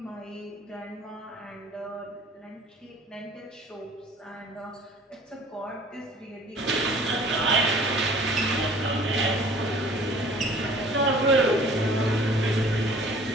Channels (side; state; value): both; normal; correlation 0.50